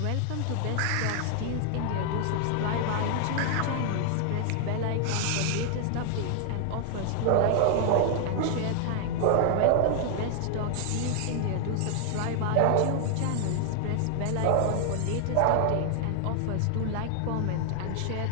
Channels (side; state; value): both; different; correlation 0.00